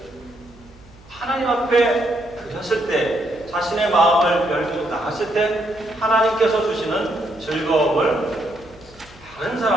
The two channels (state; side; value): noise; right; hum, 25 dB below the sound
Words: 하나님 앞에 드렸을 때 자신의 마음을 열고 나갔을 때 하나님께서 주시는 즐거움을 다른